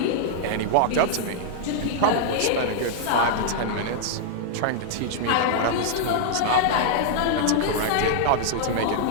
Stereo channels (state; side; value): different; both; correlation -0.01